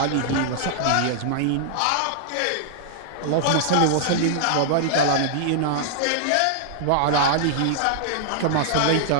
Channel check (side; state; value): both; different; correlation -0.01